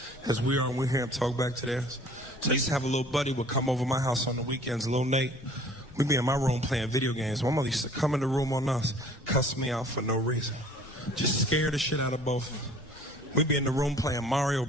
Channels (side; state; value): both; normal; correlation 0.51